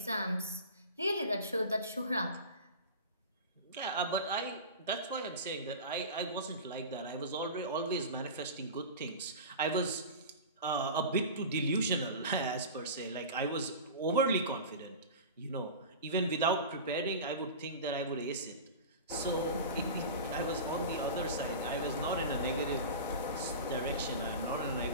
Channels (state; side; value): inverted; both; correlation -0.31